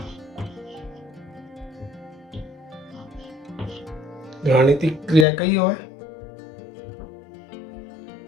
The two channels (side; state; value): right; drops out; at 5.2 s